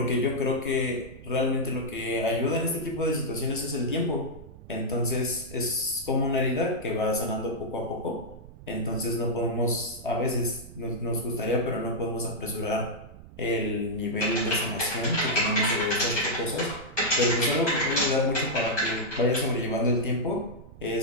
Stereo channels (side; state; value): right; noise; rumble, 17 dB below the sound